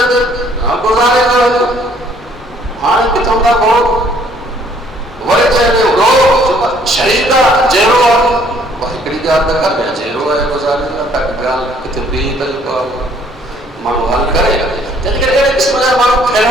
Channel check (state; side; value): normal; both; correlation 0.62